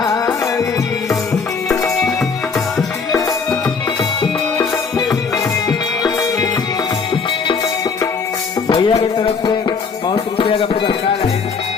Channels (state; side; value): quieter; right; 5.2 dB